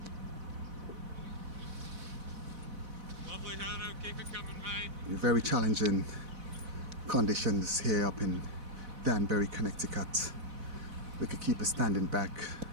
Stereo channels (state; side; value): late; left; 4.0 ms